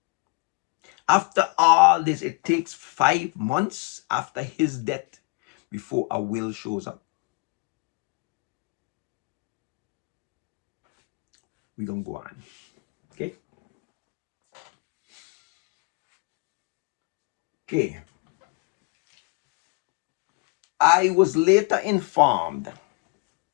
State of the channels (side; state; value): right; quieter; 29.1 dB